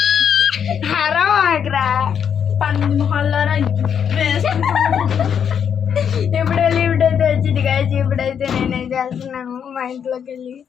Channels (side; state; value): right; quieter; 7.9 dB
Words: హరం ఆగ్రా పంది మొహాలారా ఇప్పుడు లిఫ్ట్ అయితే వచ్చింది గాయ్స్ ఇప్పుడైతే నేనేం చేస్తున్నాను మా ఇంట్లోకి వెళ్ళి